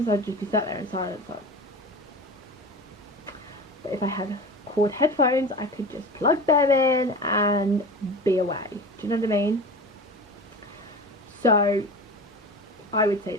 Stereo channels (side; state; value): both; normal; correlation 0.33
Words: I'd just be sat there in silence, like. But if I had cord headphones, I could just plug them in and be away. Do you know what I mean? So I would say